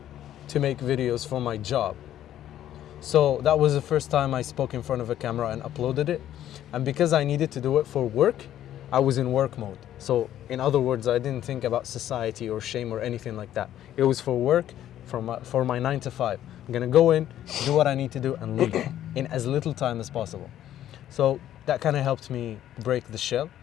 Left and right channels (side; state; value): right; quieter; 11.8 dB